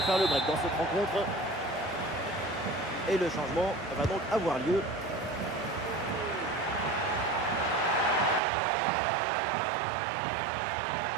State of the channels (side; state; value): left; drops out; at 8.4 s